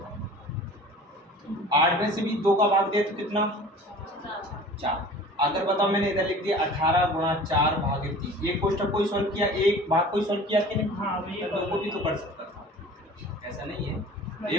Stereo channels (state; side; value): normal; both; correlation 0.43